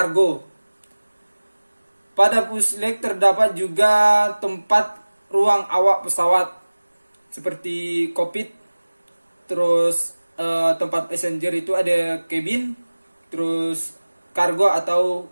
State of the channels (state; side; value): inverted; both; correlation -1.00